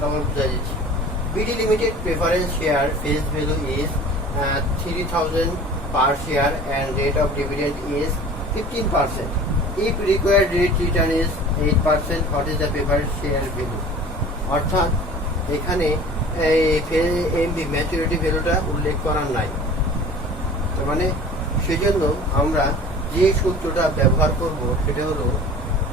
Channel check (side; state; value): both; normal; correlation 0.43